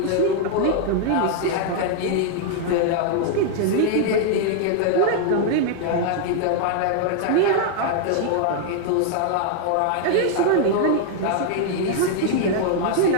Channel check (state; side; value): different; both; correlation 0.00